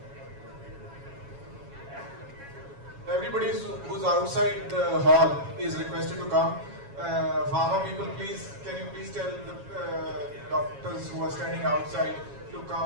Everybody who's outside the hall is requested to come. Pharma people, please, can you please tell the doctors who are standing outside to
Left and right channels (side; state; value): left; late; 7.2 ms